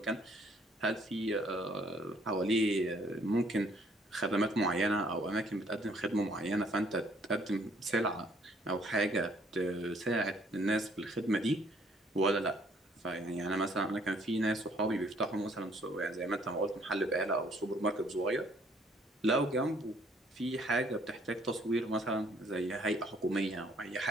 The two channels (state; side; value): normal; both; correlation 0.63